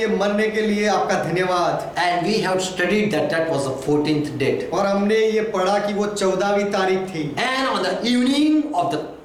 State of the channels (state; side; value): identical; both; correlation 1.00